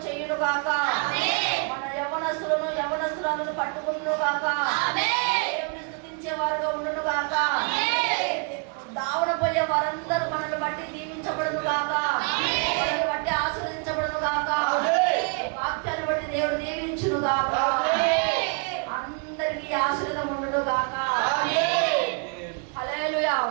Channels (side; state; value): left; quieter; 35.8 dB